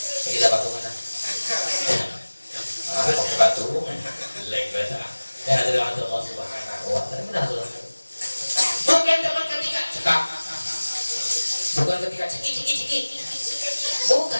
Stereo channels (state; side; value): inverted; both; correlation -1.00